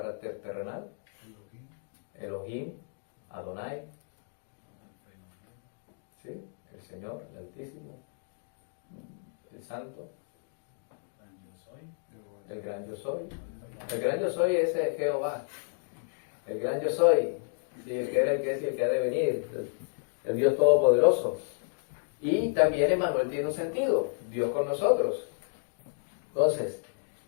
terrenal. Elohim, Adonai, ¿sí? El Señor, el Altísimo, el Santo, el Gran Yo Soy. El Gran Yo Soy es Jehová, el Gran Yo Soy, ¿sí? El que era, el que es y el que ha de venir, el Dios Todopoderoso. Y también Emmanuel tiene un sentido, Dios con nosotros. Entonces,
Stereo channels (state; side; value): silent; right; digital silence